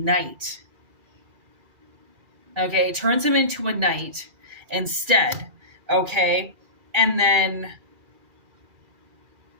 Okay, turns him into a knight instead. Okay, and then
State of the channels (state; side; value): late; left; 2.4 ms